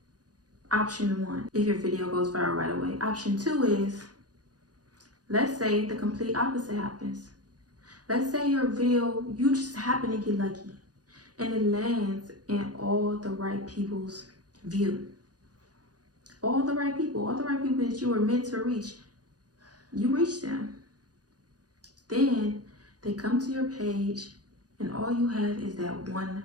option 1, if your video goes viral right away. Option 2 is, let's say the complete opposite happens. Let's say your video, you just happen to get lucky and it lands in all the right people's view. All the right people that you were meant to reach, you reach them. Then they come to your page and all you have is that one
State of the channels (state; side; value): late; left; 0.68 ms